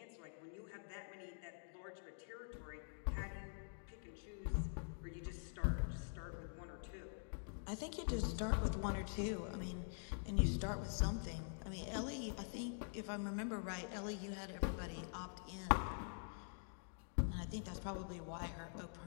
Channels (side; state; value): right; silent; digital silence